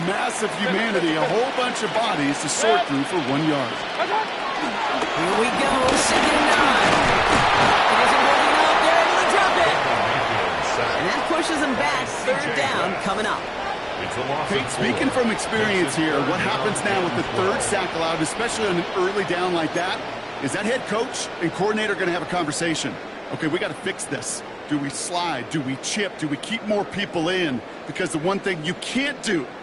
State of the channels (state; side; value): identical; both; correlation 1.00